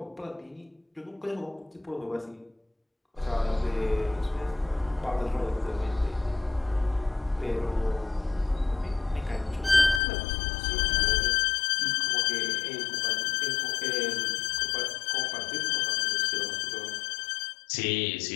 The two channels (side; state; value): right; drops out; at 10.0 s